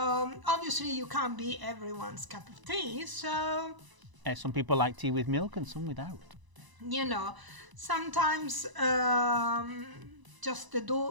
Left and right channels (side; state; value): left; late; 1.0 ms